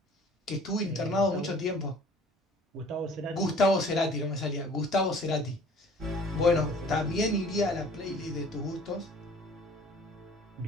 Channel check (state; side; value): normal; both; correlation 0.51